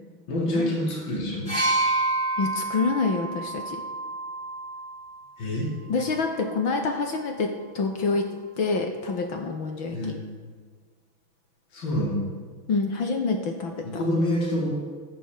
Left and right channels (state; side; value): late; right; 6.1 ms